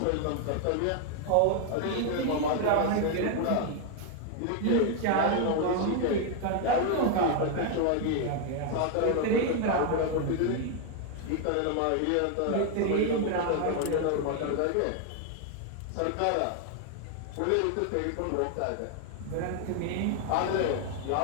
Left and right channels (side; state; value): both; different; correlation 0.01